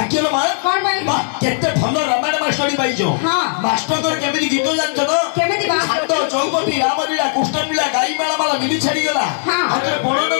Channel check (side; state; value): right; silent; 63 dB below the other